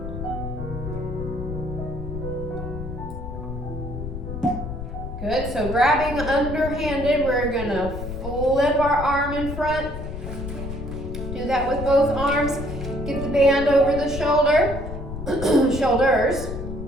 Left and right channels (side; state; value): left; noise; rumble, 7 dB below the sound